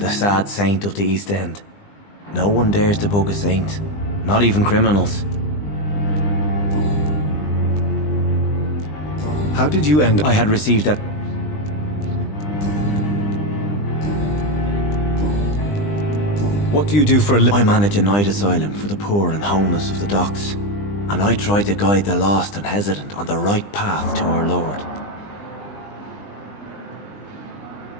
sad saint of the East End. No one dares to bug a saint, not even criminals. How did you end... I had received that... What do you do for a living? I manage a night asylum for the poor and homeless of the docks. And I try to guide the lost and hesitant on the right path to our Lord.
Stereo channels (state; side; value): late; right; 20 ms